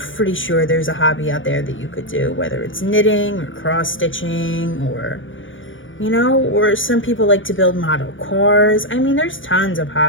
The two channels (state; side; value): late; right; 0.57 ms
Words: sure there's a hobby out there that you could do, whether it's knitting or cross-stitching or, or some people like to build model cars. There's tons of